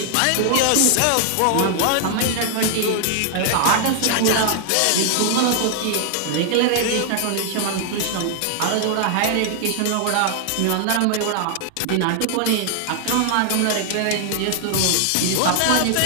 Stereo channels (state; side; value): different; both; correlation 0.00